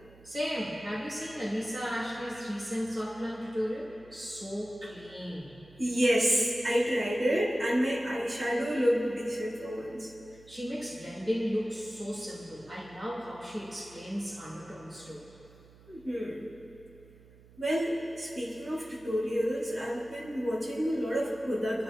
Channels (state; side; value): noise; right; hum, 23 dB below the sound